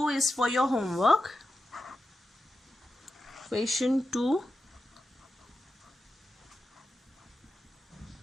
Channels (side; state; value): both; normal; correlation 0.90